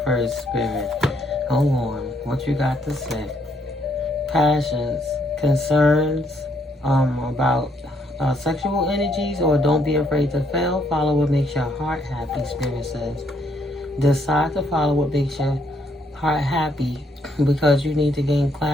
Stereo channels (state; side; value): normal; both; correlation 0.71